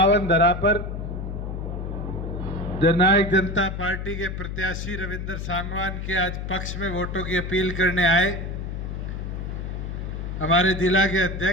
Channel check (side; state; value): left; noise; hum, 5 dB below the sound